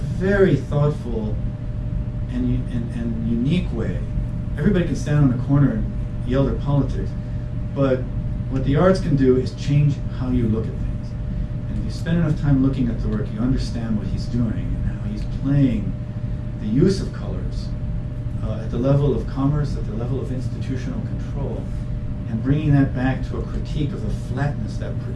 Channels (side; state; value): both; identical; correlation 1.00